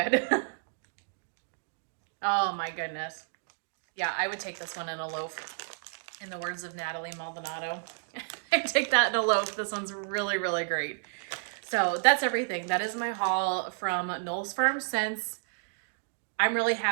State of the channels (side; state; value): left; silent; digital silence